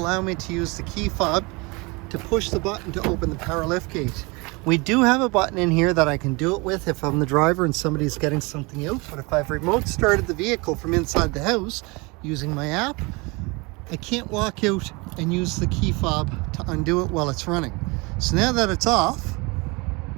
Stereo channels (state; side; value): quieter; left; 26.9 dB